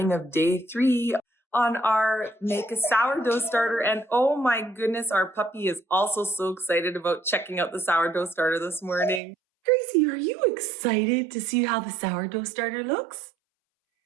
of day 3 on our Make a Sourdough Starter. And oh my goodness, our puppy is also so excited about checking out the sourdough starter this morning. Gracie, are you excited to see how the sourdough starter looks?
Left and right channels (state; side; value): drops out; left; at 9.2 s